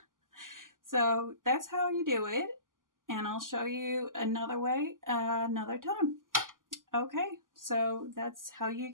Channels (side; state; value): left; late; 0.90 ms